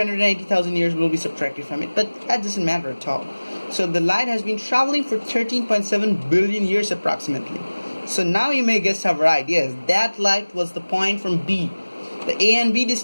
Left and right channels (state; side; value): inverted; both; correlation -1.00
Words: years will be subtracted from it, but that doesn't matter at all. So the light has been traveling for 13.7 billion years approximately. So now you may guess our right. Yes, that light was the point from B. The A and B